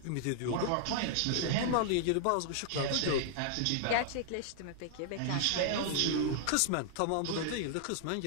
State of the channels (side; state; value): both; different; correlation -0.01